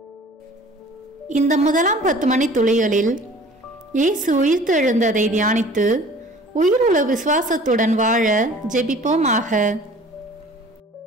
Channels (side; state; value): both; normal; correlation 0.47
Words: இந்த முதலாம் 10 மணி துளிகளில் இயேசு உயிர்த்தெழுந்ததை தியானித்து உயிருள்ள விசுவாசத்துடன் வாழ ஜெபிப்போமாக.